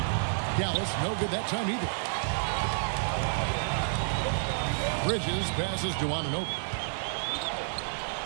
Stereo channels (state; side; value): silent; left; digital silence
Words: Dallas, no good that time either. Bridges passes to Anunoby.